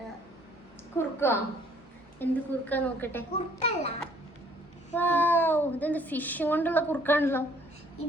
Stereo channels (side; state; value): both; normal; correlation 0.60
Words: കുറുക്കോ? എന്ത് കുറുക്കാ നോക്കട്ടെ. കുറുക്കല്ല, ഇതെന്ത് ഫിഷ് കൊണ്ടുള്ള കുറുക്കാണല്ലോ.